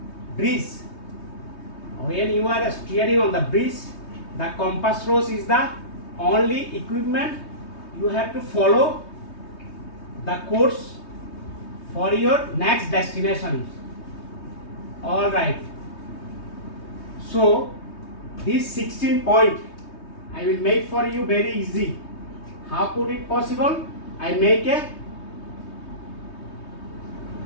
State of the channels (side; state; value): right; late; 3.2 ms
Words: breeze, the compass rose is the only equipment you have to follow the course for your next destination. All right. So this 16 point I will make for you very easy. How could it possible? I make a